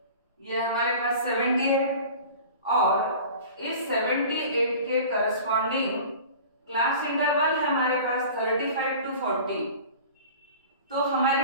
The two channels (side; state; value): both; inverted; correlation -0.40